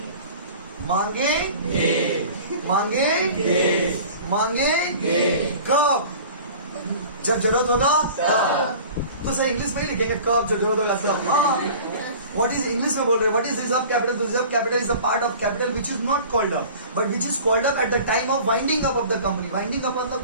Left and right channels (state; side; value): inverted; both; correlation -0.42